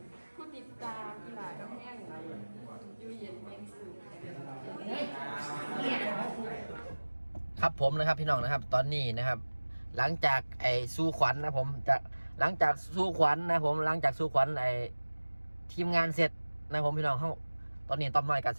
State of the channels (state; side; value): inverted; both; correlation -1.00